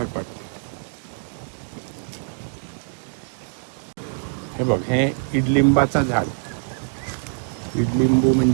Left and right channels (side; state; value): left; silent; digital silence